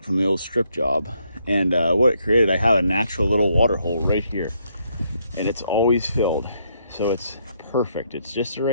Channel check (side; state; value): both; inverted; correlation -0.74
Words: old strip job. And what it created, I have a natural little water hole right here. And it's always filled. So it's perfect. It's just the